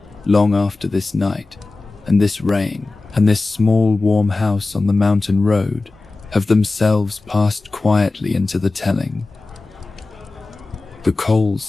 long after this night, and this rain, and this small warm house on the mountain road have themselves passed quietly into the telling. The coals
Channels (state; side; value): quieter; right; 3.4 dB